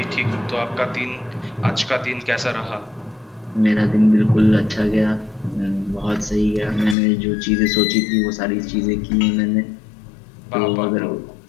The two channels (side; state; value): right; drops out; at 7.0 s